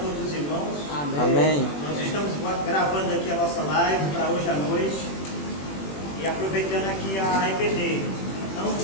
os irmãos. Amém. Nós estamos gravando aqui a nossa live para hoje à noite. E aproveitando aqui a EBD.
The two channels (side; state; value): right; late; 21 ms